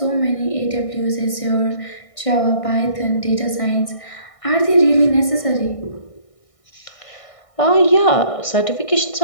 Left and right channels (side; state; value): right; late; 1.6 ms